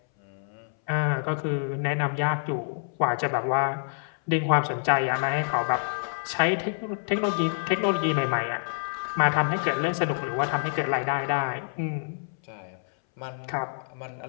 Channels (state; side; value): silent; right; 60 dB below the other